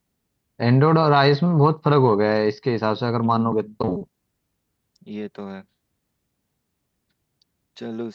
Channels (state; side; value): identical; both; correlation 1.00